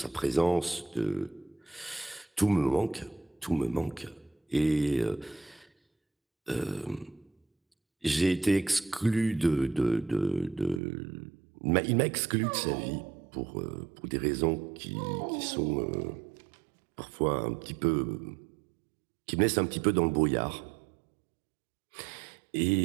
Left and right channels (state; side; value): drops out; left; at 10.8 s